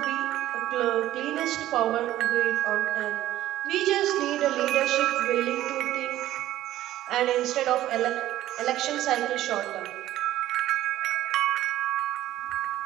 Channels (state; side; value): quieter; left; 14.0 dB